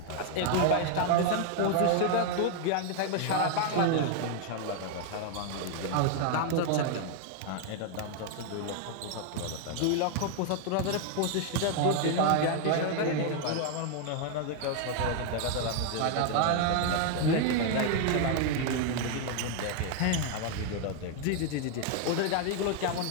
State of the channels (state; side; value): different; both; correlation 0.00